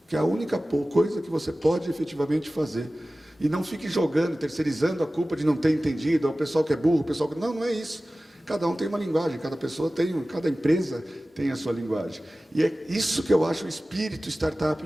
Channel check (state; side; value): normal; both; correlation 0.97